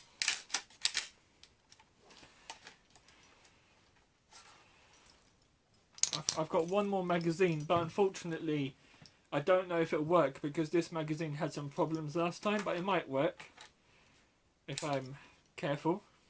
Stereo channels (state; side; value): identical; both; correlation 1.00